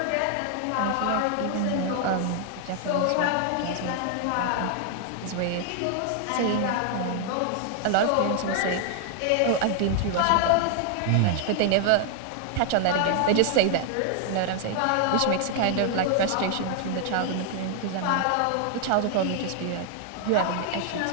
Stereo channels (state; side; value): different; both; correlation 0.00